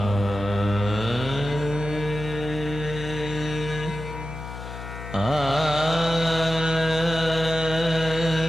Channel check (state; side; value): noise; left; hum, 10 dB below the sound